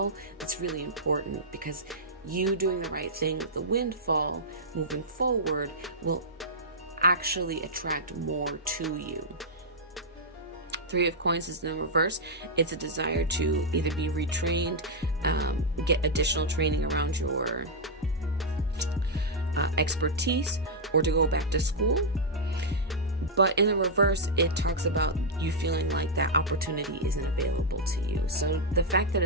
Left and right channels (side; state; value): both; normal; correlation -0.06